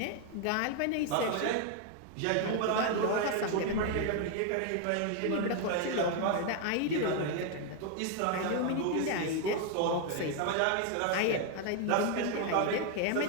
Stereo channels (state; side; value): different; both; correlation 0.01